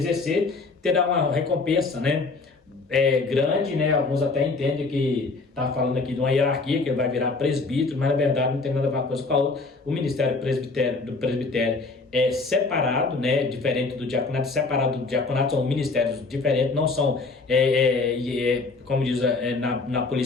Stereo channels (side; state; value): right; quieter; 3.8 dB